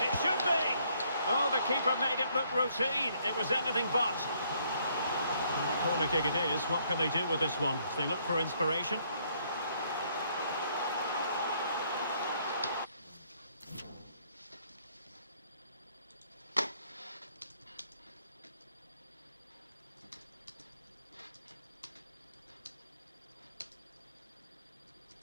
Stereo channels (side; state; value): both; inverted; correlation -0.68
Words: It should be. Oh, the keeper made it look routine. It was anything but. And the corner kick it is. What can they do with this one? They look for inspiration.